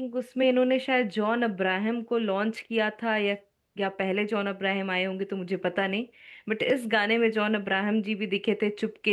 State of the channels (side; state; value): both; identical; correlation 1.00